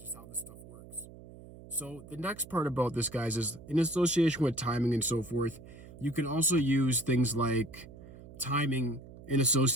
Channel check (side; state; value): right; noise; hum, 17 dB below the sound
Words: just how this stuff works. So the next part about this, guys, is in association with timing and so forth, you can also use things like timing in